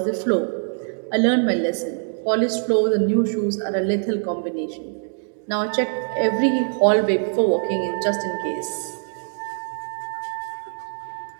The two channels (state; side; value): silent; left; digital silence